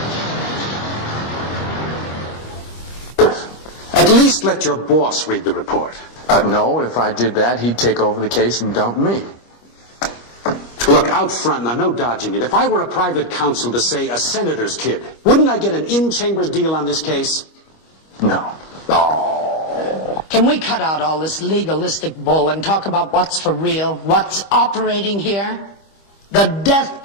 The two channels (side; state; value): right; late; 25 ms